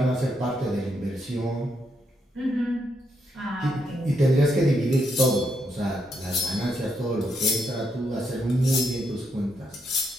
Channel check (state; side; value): normal; both; correlation 0.79